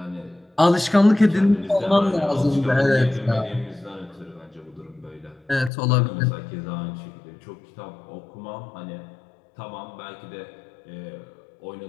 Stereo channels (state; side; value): drops out; right; at 5.7 s